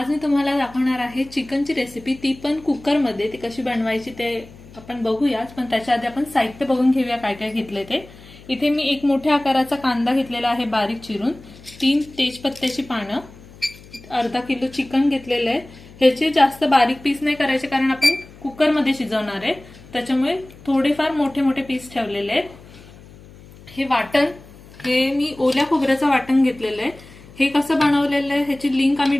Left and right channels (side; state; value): left; noise; hum, 21 dB below the sound